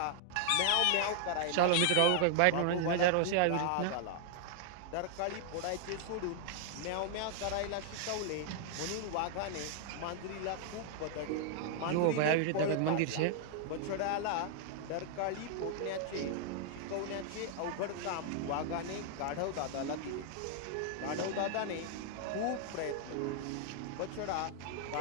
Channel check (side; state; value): both; different; correlation -0.01